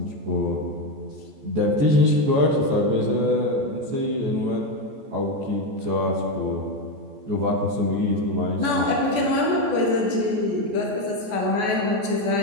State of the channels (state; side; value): late; left; 14 ms